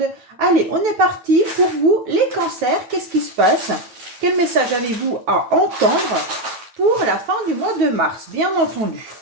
Allez, on est parti pour vous les cancers, qu'est-ce qui se passe? Quel message avez-vous à entendre pour la fin du mois de mars, bien entendu?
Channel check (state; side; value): late; left; 9.0 ms